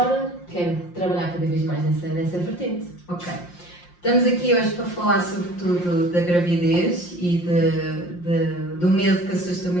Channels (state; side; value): late; right; 5.7 ms